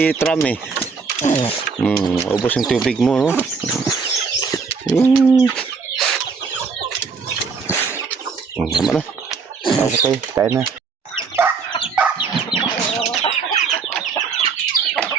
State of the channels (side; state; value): left; quieter; 5.1 dB